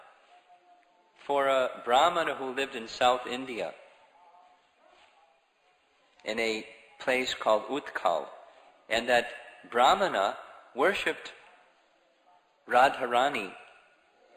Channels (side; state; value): both; identical; correlation 1.00